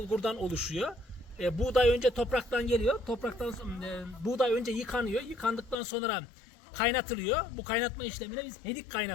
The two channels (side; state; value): right; drops out; at 5.8 s